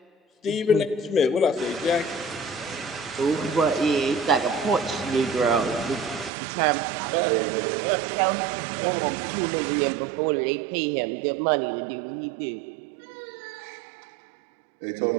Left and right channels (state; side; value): drops out; left; at 6.3 s